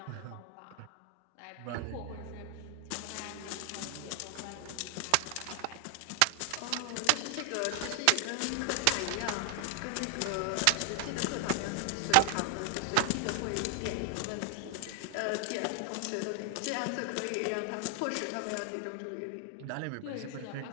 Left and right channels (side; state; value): both; different; correlation 0.00